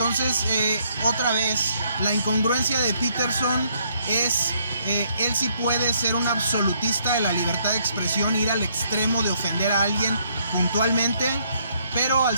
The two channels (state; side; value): inverted; both; correlation -0.70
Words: otra vez, la incongruencia de Peterson es, él sí puede ser un absolutista de la libertad de expresión, ir al extremo de ofender a alguien puntualmente, pero al